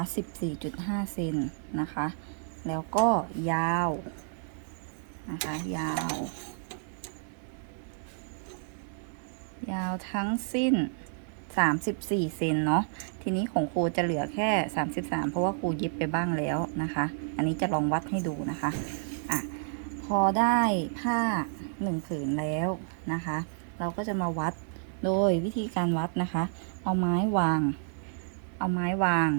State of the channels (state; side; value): silent; left; digital silence